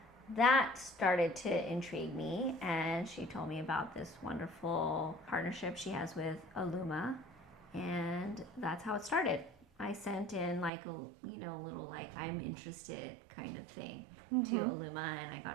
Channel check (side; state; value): left; drops out; at 10.7 s